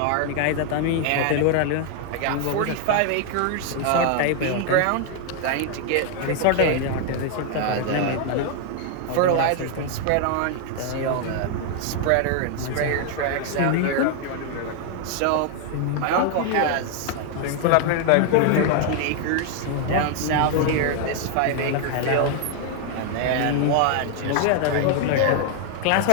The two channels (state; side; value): different; both; correlation 0.00